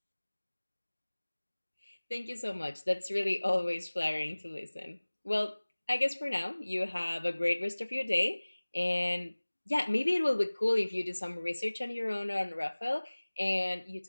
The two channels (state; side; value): inverted; both; correlation -1.00